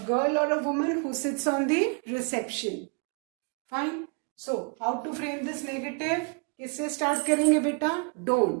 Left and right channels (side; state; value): left; quieter; 37.8 dB